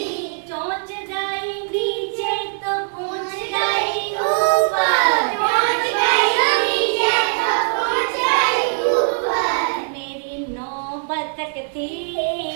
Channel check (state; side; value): silent; left; digital silence